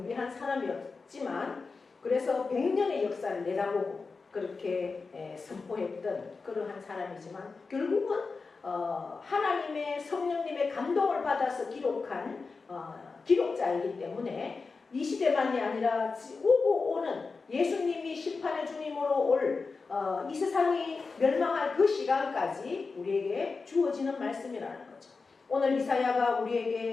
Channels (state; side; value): quieter; right; 4.4 dB